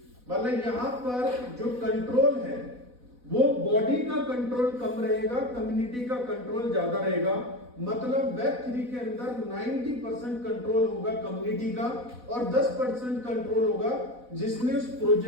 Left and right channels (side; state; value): left; late; 4.1 ms